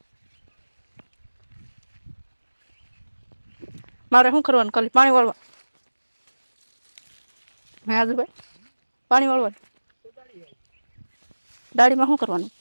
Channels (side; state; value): both; inverted; correlation -1.00